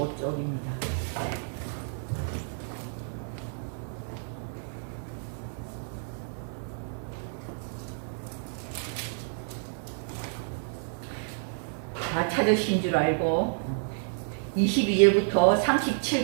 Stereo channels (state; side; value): silent; left; 58 dB below the other